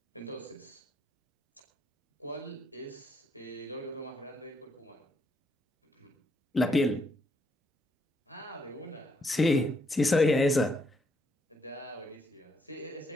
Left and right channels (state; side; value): normal; both; correlation 0.75